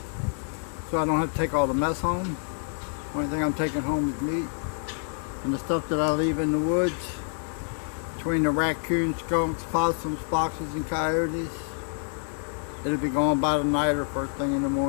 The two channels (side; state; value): right; silent; 59 dB below the other